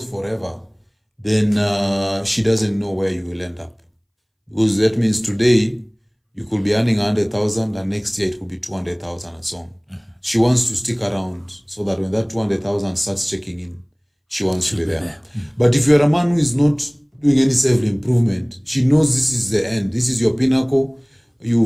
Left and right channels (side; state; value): both; identical; correlation 1.00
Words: forever, then she doesn't know where you will end up. Because that means today, you could be earning 100,000 and next year it could be 200,000 and so on. She wants to stick around so that when that 200,000 starts checking in, she wants to be there. But if you're a man who is not doing any self-improvement, she knows this is the end. This is your pinnacle.